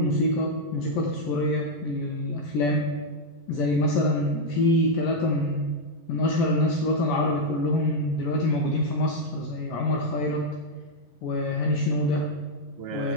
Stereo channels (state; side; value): late; right; 11 ms